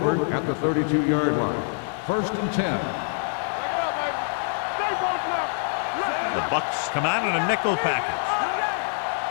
at the 32-yard line. 1st and 10. The Bucks come out in a nickel package.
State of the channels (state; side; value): silent; right; digital silence